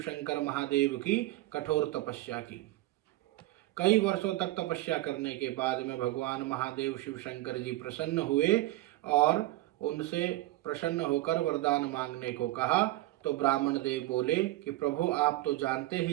शंकर महादेव की कठोर तपस्या की। कई वर्षों तक तपस्या करने के बाद में भगवान महादेव शिव शंकर जी प्रसन्न हुए और उनसे प्रसन्न होकर वरदान मांगने को कहा। तो ब्राह्मण देव बोले कि प्रभु, आप तो जानते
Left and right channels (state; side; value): quieter; left; 17.4 dB